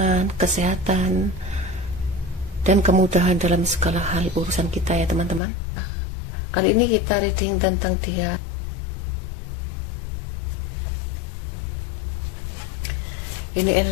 kesehatan, dan kemudahan dalam segala hal urusan kita ya teman-teman. Kali ini kita reading tentang dia. Ini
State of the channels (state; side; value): drops out; right; at 5.4 s